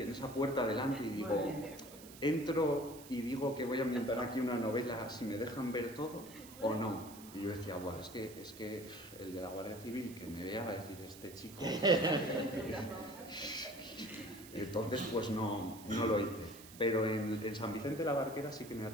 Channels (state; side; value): noise; right; hiss, 17 dB below the sound